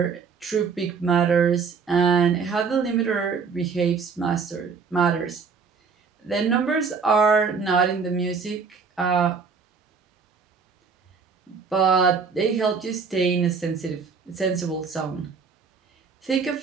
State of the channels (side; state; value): left; quieter; 5.5 dB